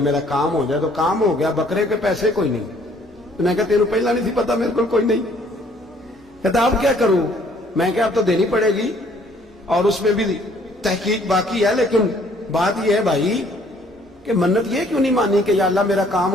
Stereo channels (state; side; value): normal; both; correlation 0.61